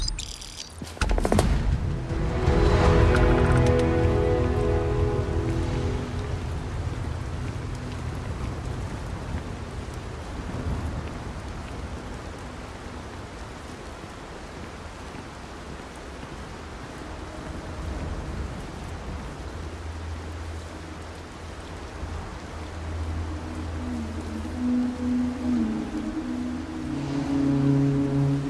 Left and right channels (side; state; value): both; identical; correlation 1.00